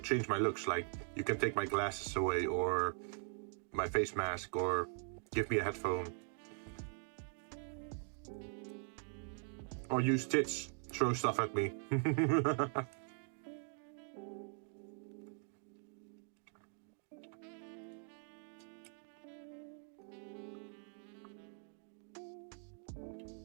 change my looks. Like, you can take my glasses away, or my face mask, or give me a headphone. Or use tits, throw stuff at me.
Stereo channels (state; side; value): silent; left; 50 dB below the other